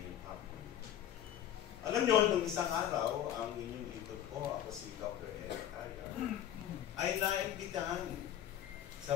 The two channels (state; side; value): quieter; right; 11.0 dB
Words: hapon. Alam nyo, nung isang araw, ang inyong lingkod ko, ako si Dr. Eric Taya, ay naimbitahan